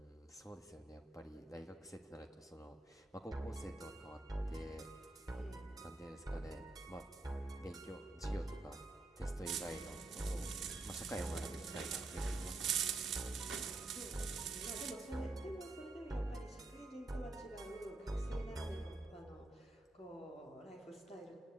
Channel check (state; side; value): quieter; left; 3.1 dB